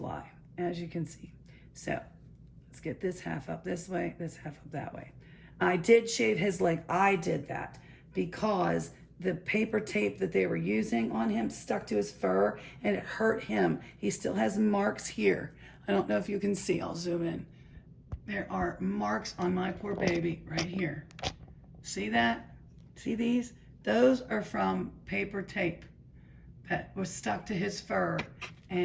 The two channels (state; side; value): identical; both; correlation 1.00